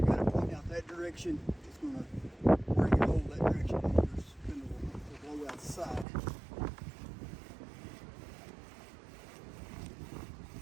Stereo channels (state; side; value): drops out; left; at 6.1 s